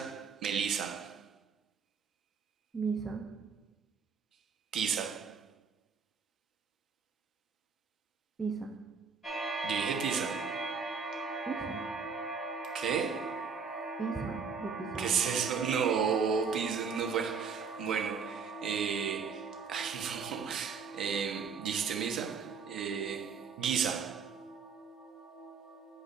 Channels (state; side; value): quieter; left; 5.7 dB